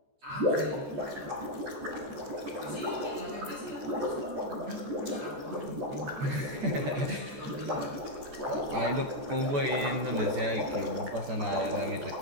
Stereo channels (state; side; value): late; left; 14 ms